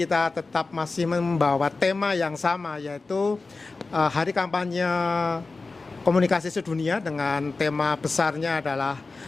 tetap masih membawa tema yang sama, yaitu Hari Kampanye Komunikasi Sedunia, dengan tema besarnya adalah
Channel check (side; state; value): right; quieter; 3.8 dB